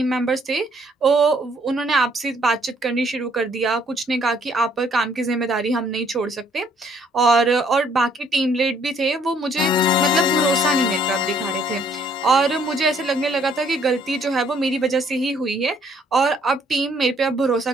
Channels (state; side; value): normal; both; correlation 0.64